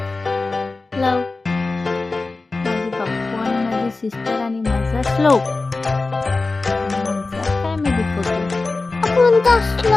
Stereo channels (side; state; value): right; quieter; 3.6 dB